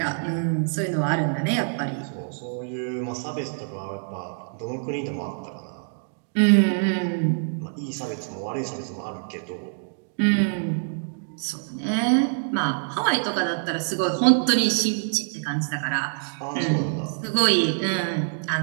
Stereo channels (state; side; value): silent; left; digital silence